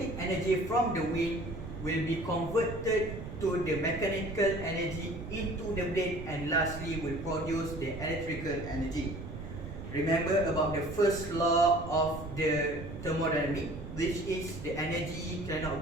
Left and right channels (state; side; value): noise; right; rumble, 10 dB below the sound